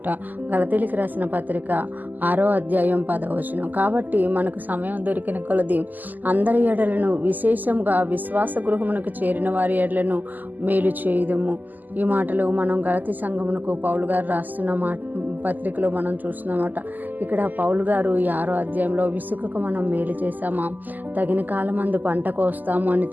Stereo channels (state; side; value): late; left; 0.084 ms